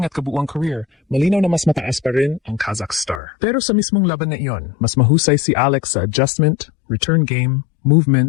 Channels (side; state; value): right; drops out; at 3.2 s